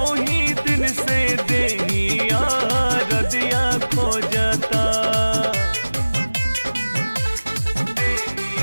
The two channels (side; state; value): both; inverted; correlation -1.00